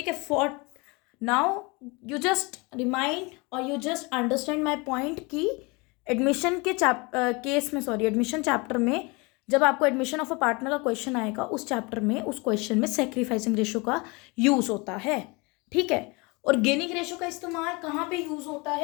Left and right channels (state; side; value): quieter; right; 27.3 dB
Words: है, for now you just remind और you just understand my point कि एडमिशन के एडमिशन चैप्टर में जब आपको एडमिशन ऑफ अ पार्टनर का क्वेश्चन आएगा, उस चैप्टर में उस क्वेश्चन में सैक्रिफाइसिंग रेशियो का यूज होता है। ठीक है, और गेनिंग रेशियो का इस्तेमाल कहाँ पे यूज होता